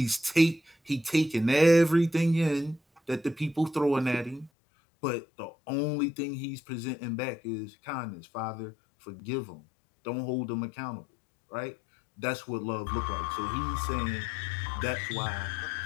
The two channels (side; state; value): right; drops out; at 4.5 s